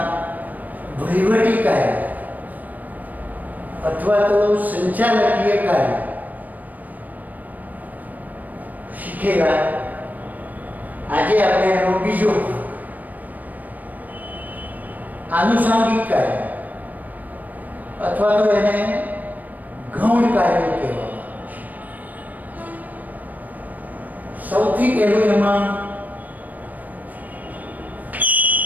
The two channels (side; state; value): left; late; 0.081 ms